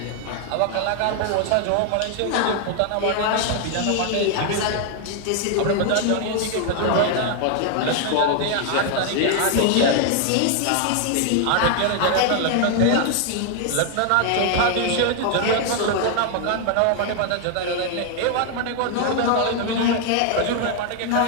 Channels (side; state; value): both; different; correlation 0.00